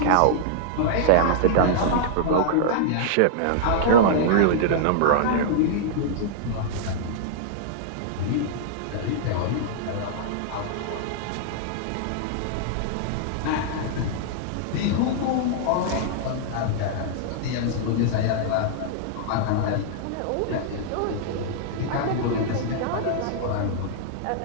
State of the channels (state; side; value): different; both; correlation -0.01